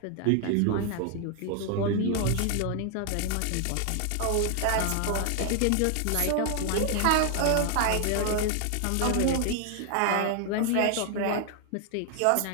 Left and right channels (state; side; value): different; both; correlation 0.00